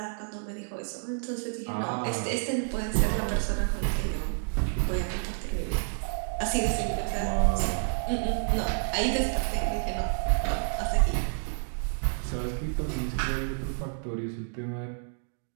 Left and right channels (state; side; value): silent; left; digital silence